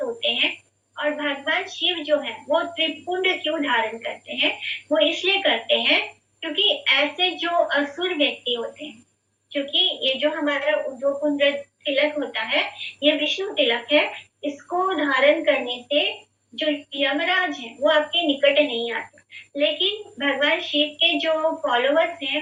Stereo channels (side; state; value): both; identical; correlation 1.00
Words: होते हैं। और भगवान शिव जो है वो त्रिपुंड क्यों धारण करते हैं? वो इसलिए करते हैं क्योंकि ऐसे जो असुर व्यक्ति होते हैं, क्योंकि ये जो हमारा जो कुंड तिलक होता है ये विष्णु तिलक है, इसको धारण करने से जो यमराज है वो आपके निकट नहीं आते। लेकिन भगवान शिव के जो फॉलोवर्स